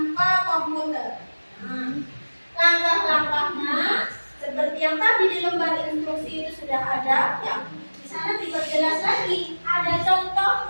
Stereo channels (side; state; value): both; inverted; correlation -1.00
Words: komputer. Nah, langkah-langkahnya seperti yang tadi di lembar instruksi itu sudah ada. Ya, di sana diperjelas lagi. Ada